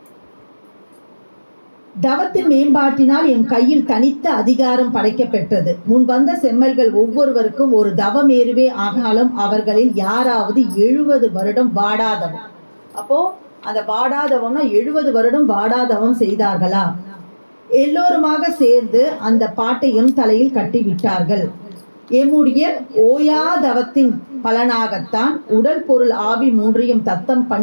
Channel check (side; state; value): both; inverted; correlation -1.00